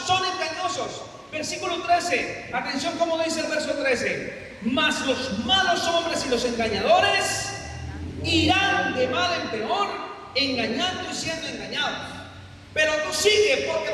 engañosos. Versículo 13, atención como dice el verso 13. Mas los malos hombres y los engañadores irán de mal en peor, engañando y siendo engañados. Pero tú sigue porque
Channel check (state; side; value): identical; both; correlation 1.00